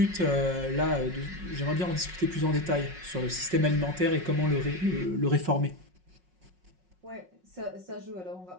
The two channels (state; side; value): late; left; 5.5 ms